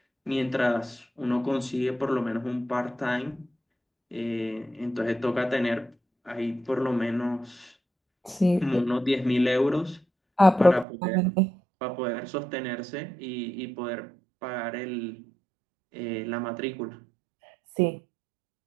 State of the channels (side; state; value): left; drops out; at 10.9 s